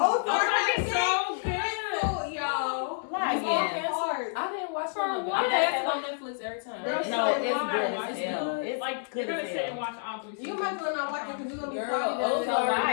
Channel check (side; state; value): right; silent; digital silence